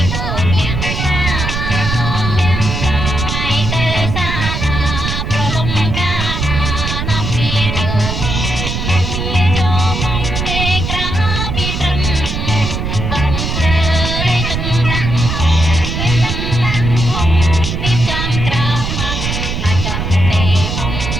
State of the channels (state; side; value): noise; right; rumble, 3 dB below the sound